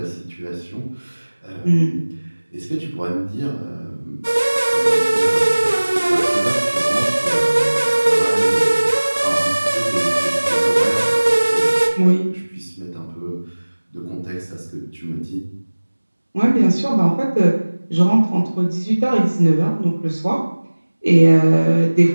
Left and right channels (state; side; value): inverted; both; correlation -1.00